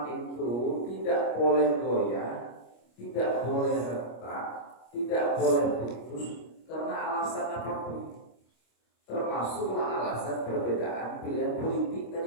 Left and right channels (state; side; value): late; right; 25 ms